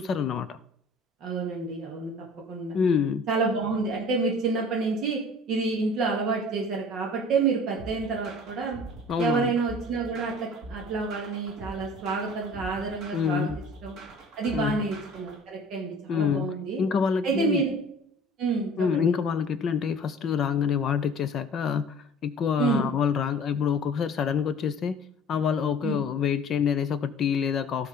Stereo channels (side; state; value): both; normal; correlation 0.46